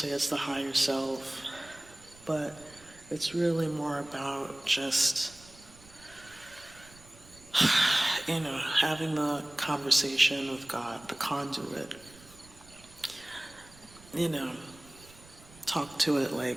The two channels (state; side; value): noise; right; rumble, 23 dB below the sound